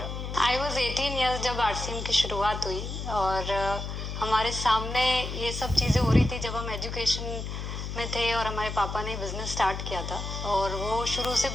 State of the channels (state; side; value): noise; left; hum, 6 dB below the sound